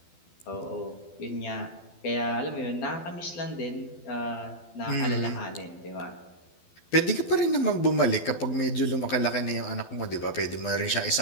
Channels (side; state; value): right; late; 12 ms